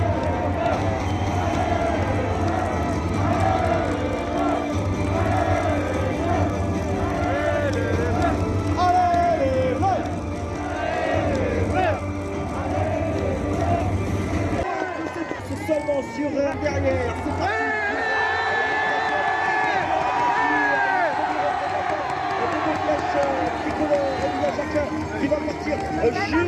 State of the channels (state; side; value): identical; both; correlation 1.00